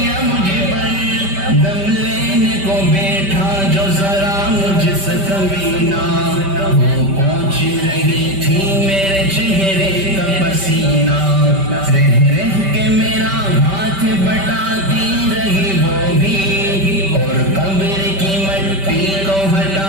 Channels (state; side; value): late; left; 5.1 ms